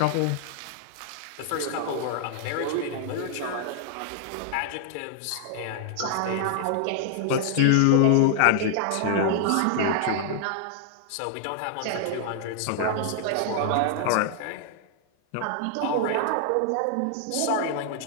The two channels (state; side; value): different; both; correlation 0.00